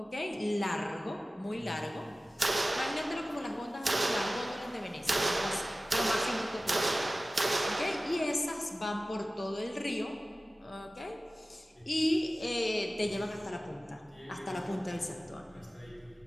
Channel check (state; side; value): normal; both; correlation 0.96